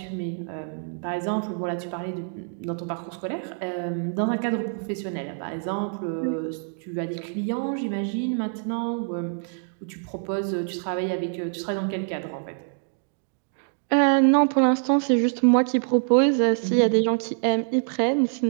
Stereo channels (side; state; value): left; silent; 61 dB below the other